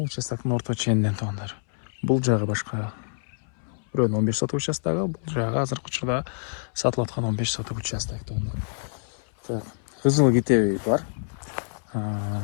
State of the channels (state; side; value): silent; right; 61 dB below the other